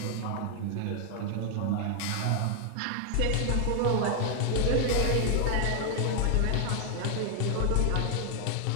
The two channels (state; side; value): different; both; correlation 0.00